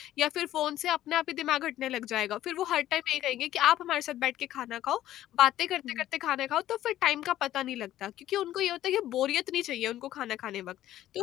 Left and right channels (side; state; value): right; quieter; 13.3 dB